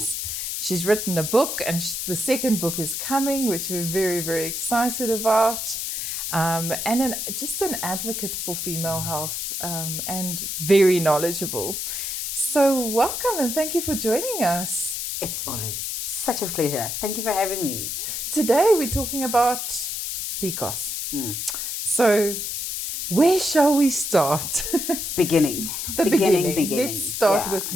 She's written a book, and the second book is coming, which we're very, very excited about. And just an advocate for female health and very knowledgeable. So welcome and thank you for joining us. It's always such a pleasure. Thank you for having me. Today we're talking about PCOS. So where shall we start? Beginning. The beginning. Let's start with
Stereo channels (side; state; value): left; noise; hiss, 3 dB below the sound